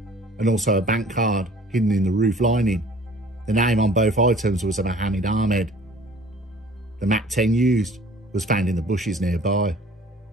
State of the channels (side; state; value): both; normal; correlation 0.50